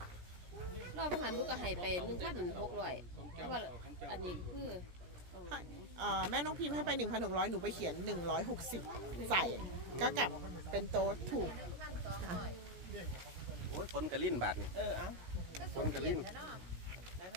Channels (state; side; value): late; left; 17 ms